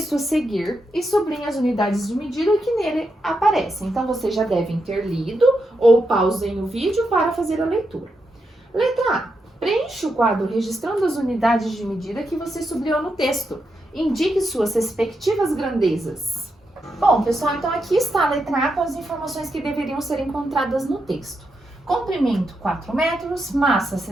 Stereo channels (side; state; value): both; normal; correlation 0.84